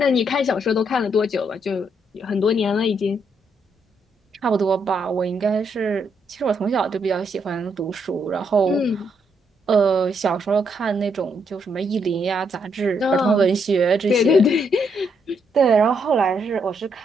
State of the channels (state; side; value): normal; both; correlation 0.76